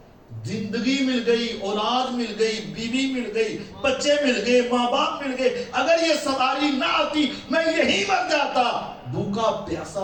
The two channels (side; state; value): both; identical; correlation 1.00